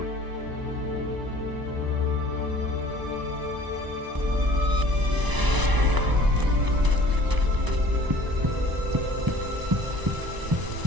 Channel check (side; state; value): left; late; 1.0 ms